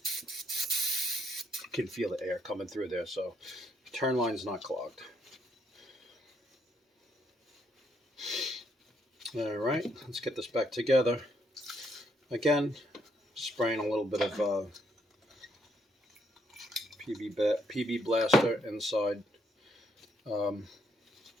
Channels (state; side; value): normal; both; correlation 0.72